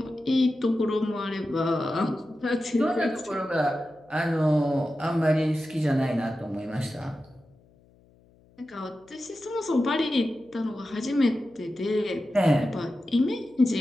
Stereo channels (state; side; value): noise; left; hum, 30 dB below the sound